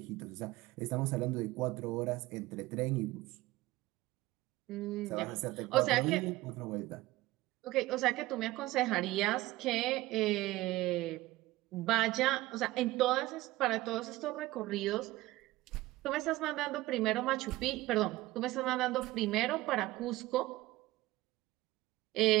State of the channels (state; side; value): quieter; left; 18.1 dB